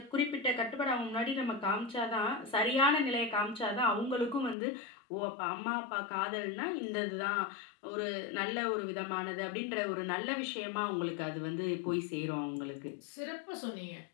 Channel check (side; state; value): right; drops out; at 4.5 s